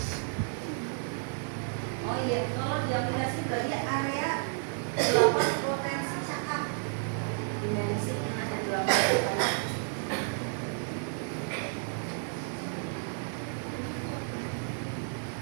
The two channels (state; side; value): silent; left; 57 dB below the other